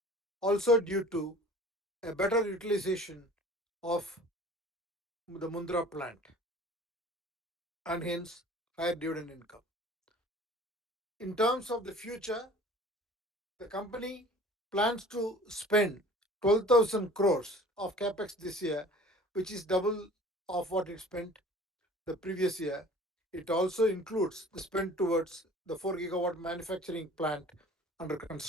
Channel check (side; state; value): both; normal; correlation 0.46